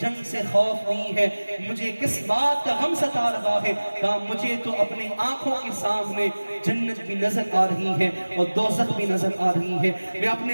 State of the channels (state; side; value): inverted; both; correlation -1.00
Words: جنگ سے خوف نہیں ہے، مجھے کس بات کا غم ستا رہا ہے؟ کہا مجھے تو اپنی آنکھوں کے سامنے جنت بھی نظر آ رہی ہے اور دوزخ بھی نظر آ رہی ہے، میں